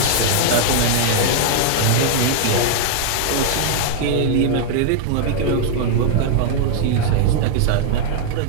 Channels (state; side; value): different; both; correlation -0.01